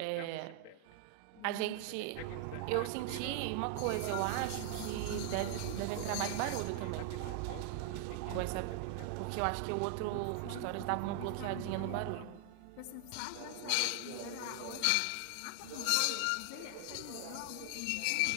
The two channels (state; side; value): different; both; correlation 0.00